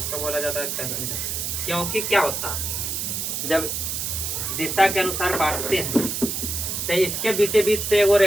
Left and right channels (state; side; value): noise; right; hiss, 2 dB below the sound